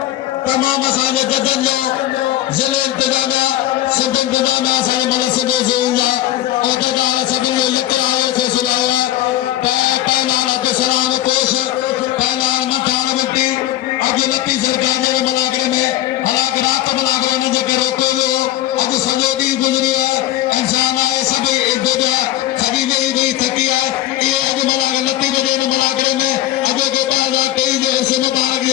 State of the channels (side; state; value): right; quieter; 14.1 dB